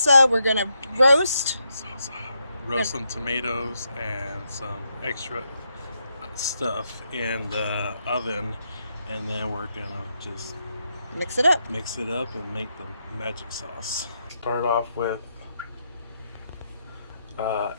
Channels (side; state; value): both; inverted; correlation -0.81